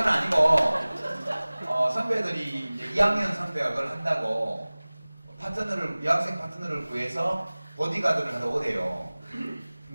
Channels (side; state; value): both; inverted; correlation -0.99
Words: 아니고 선배들이 이제 2학년 선배가 그걸 한다고 파트너를 여학생 파트너를 구해서 보디가드를 하러 오대요.